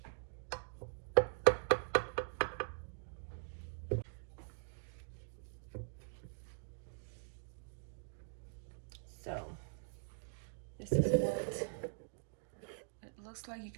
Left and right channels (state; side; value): silent; left; digital silence